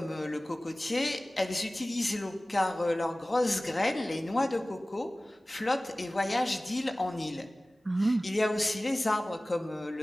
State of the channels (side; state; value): both; normal; correlation 0.98